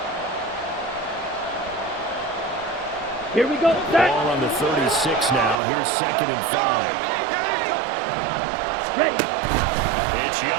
Here we go. Ball on the 36 now. Here's 2nd and 5. Ready. It's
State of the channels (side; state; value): left; drops out; at 5.6 s